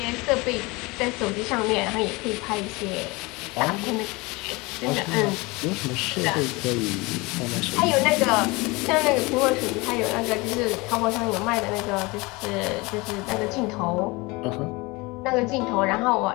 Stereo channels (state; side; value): quieter; right; 24.5 dB